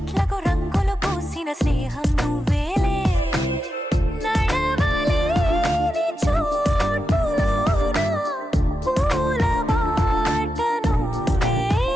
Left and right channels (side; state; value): both; normal; correlation 0.88